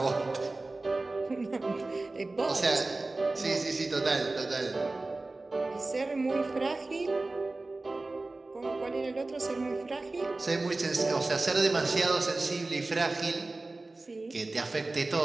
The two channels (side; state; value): left; quieter; 3.2 dB